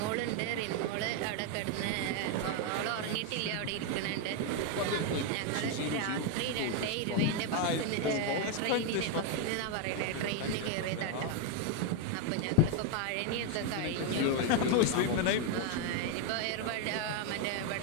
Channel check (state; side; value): different; both; correlation 0.01